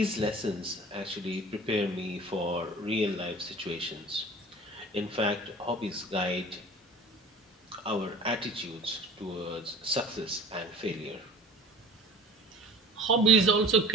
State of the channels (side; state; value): both; normal; correlation 0.40